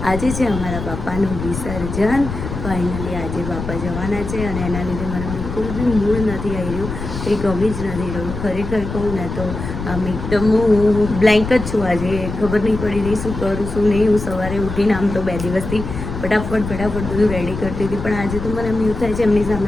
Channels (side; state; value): left; noise; rumble, 7 dB below the sound